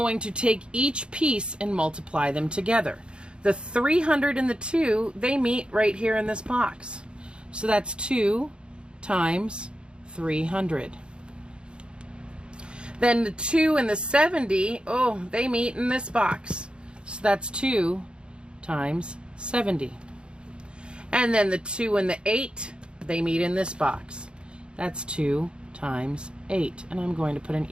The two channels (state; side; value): late; left; 0.054 ms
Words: to take each piece and multiply them together. The 300 and the 2, they meet right here in this box. So that's 2 times 300. Then the 2 and the 70, oh, they meet in this box. So that's 2 times 70. And then the 2 and the 8, they meet in this box. That's 2 times 8. And I'm going to put an